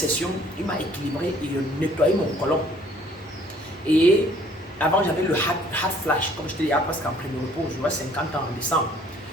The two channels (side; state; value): both; normal; correlation 0.58